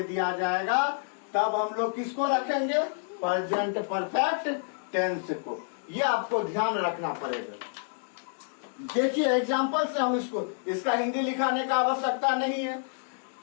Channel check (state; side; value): silent; right; digital silence